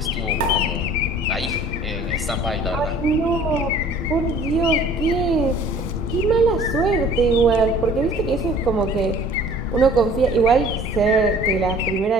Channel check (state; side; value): normal; both; correlation 0.51